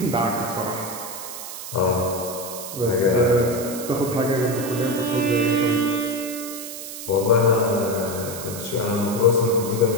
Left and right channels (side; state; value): right; noise; hiss, 10 dB below the sound